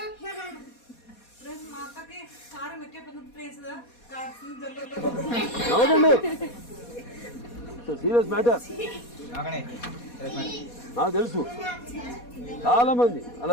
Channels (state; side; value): late; right; 4.2 ms